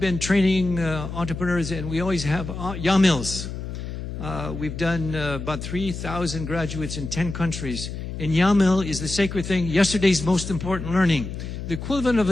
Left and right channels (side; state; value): left; noise; hum, 7 dB below the sound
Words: been training entrepreneurs, and we always have YAMLs. We've done about 3,000 graduates in 10 countries. And YAML is the sacred thing, yesterday's most important learning. The equivalent of